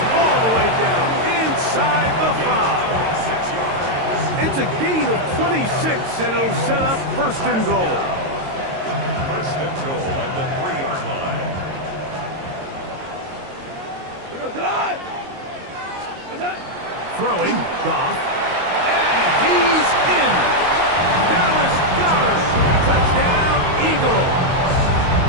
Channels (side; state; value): left; late; 22 ms